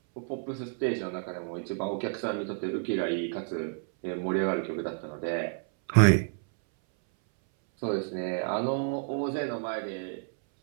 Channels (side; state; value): left; silent; 58 dB below the other